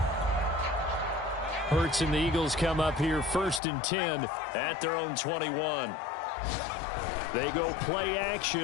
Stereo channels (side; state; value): right; drops out; at 3.6 s